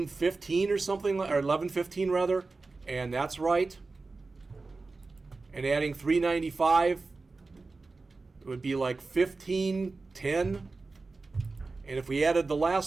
or something, or $11.15 rather, and that's right. And adding $3.95, it would be like $15.10. And if we added the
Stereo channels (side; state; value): left; quieter; 3.8 dB